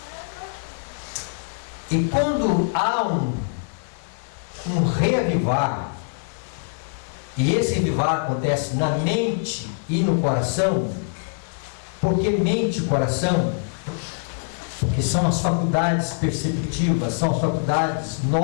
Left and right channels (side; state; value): right; silent; 63 dB below the other